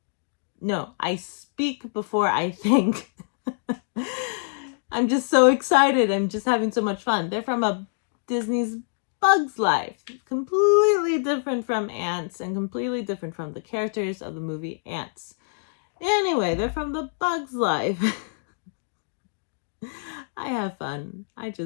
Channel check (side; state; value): right; silent; digital silence